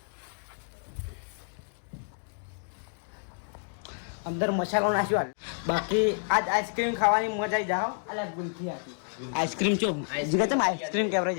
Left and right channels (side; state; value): right; silent; 58 dB below the other